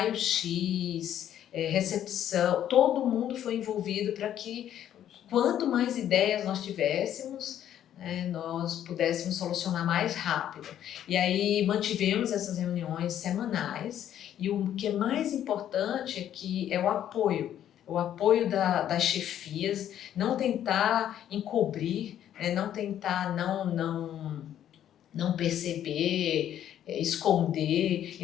recepção, todo mundo foi envolvido para que quanto mais ideias nós tivéssemos, nós pudéssemos solucionar mais rápido. E aí mantivemos essas reuniões semanais, e o que é mais importante é que é o apoio das chefias, não tentar encobrir, não tentar não perceber, esconder,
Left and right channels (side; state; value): right; quieter; 10.8 dB